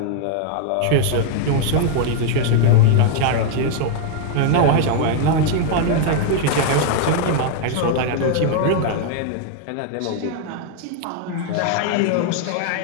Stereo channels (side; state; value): both; different; correlation 0.00